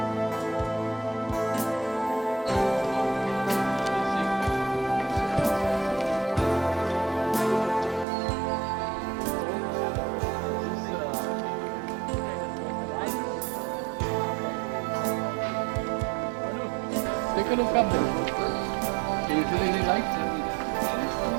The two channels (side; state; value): left; drops out; at 8.1 s